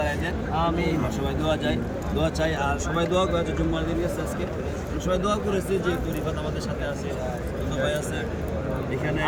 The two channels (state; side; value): identical; both; correlation 1.00